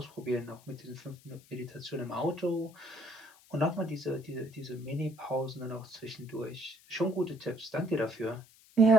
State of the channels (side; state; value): left; noise; hiss, 25 dB below the sound